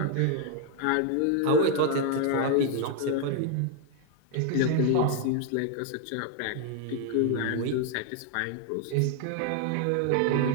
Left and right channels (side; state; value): both; different; correlation 0.00